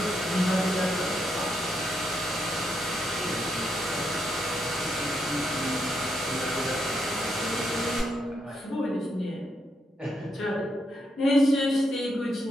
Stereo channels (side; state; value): both; normal; correlation 0.79